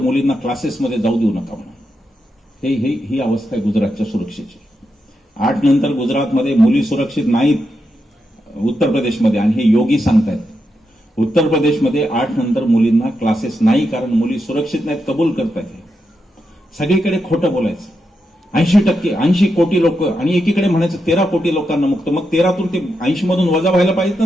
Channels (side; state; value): both; normal; correlation 0.85